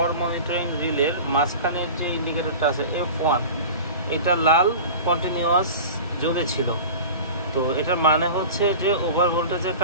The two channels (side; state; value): both; inverted; correlation -0.34